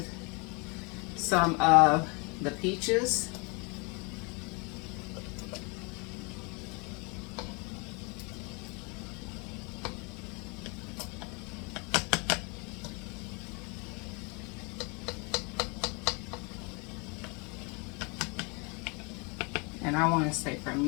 some of the peaches. And I want to say for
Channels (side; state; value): right; quieter; 31.0 dB